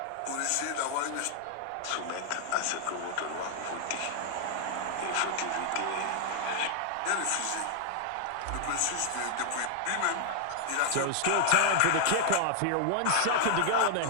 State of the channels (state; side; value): different; both; correlation -0.01